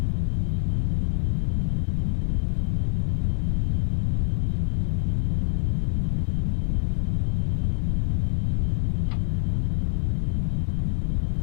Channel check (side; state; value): right; silent; 62 dB below the other